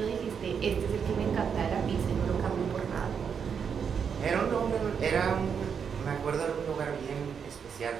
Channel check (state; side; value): quieter; left; 6.9 dB